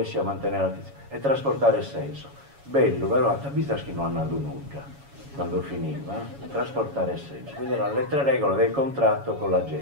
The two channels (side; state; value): left; late; 7.2 ms